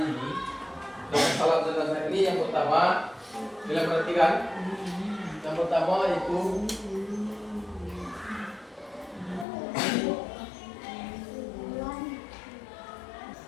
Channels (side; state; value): right; drops out; at 9.5 s